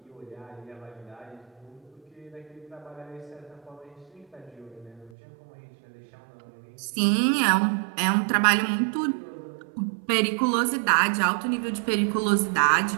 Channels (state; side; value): drops out; left; at 5.1 s